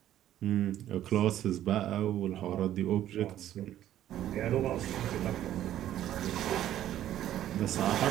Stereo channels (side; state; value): left; quieter; 12.2 dB